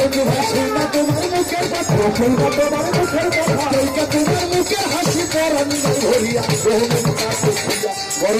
ভাই সেইটা তোমার মুখের কথা সেইটা তোমার মুখের কথা সেইটা তোমার মুখের হাসি পরান ধরিয়া বহুমুক্তা দেখিয়া বড়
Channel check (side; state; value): both; identical; correlation 1.00